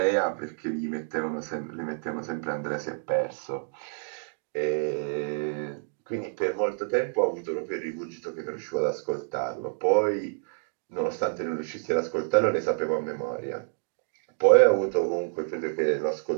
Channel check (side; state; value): left; silent; digital silence